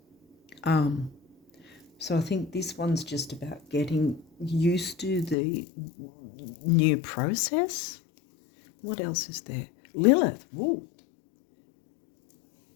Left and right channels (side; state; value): right; drops out; at 5.4 s